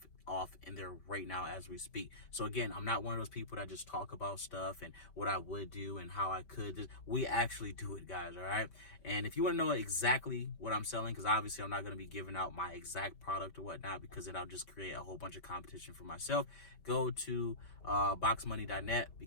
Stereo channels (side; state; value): right; late; 5.2 ms